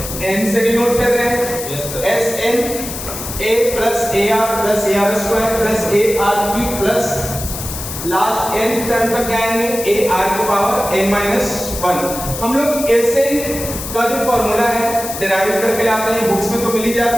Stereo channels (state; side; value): noise; left; hiss, 8 dB below the sound